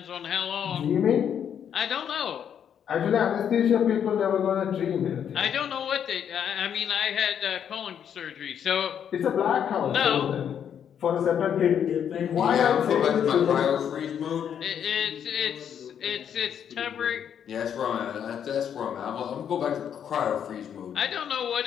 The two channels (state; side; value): quieter; right; 8.6 dB